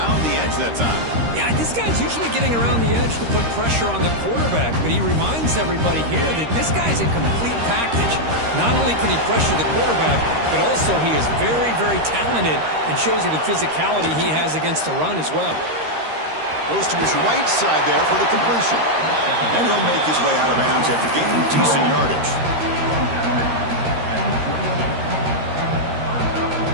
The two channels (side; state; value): left; late; 13 ms